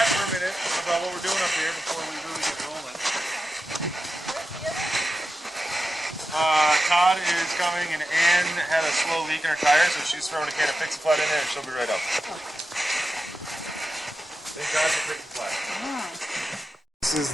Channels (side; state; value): both; normal; correlation 0.91